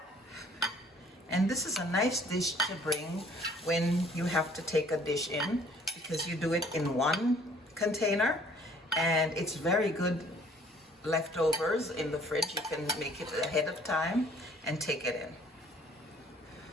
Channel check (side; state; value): both; normal; correlation 0.57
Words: And this is a nice dish to bring when you have to take a dish in, because you do it in one container, and it's very good leftovers in the fridge. You can make it ahead of time and take it in.